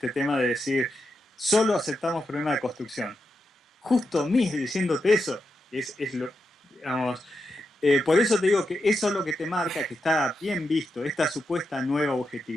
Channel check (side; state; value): both; normal; correlation 0.86